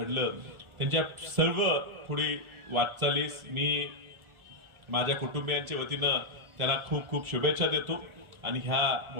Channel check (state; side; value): late; left; 1.3 ms